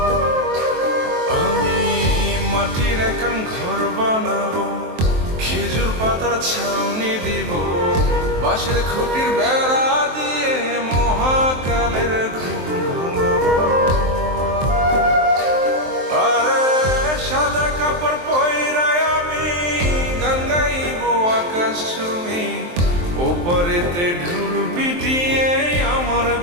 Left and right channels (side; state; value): left; late; 23 ms